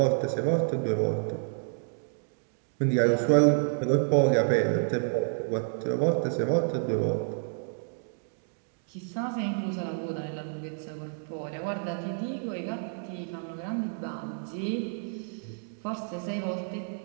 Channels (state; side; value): silent; left; digital silence